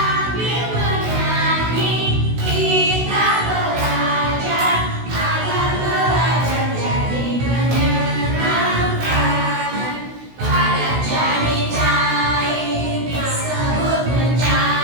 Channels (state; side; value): late; left; 16 ms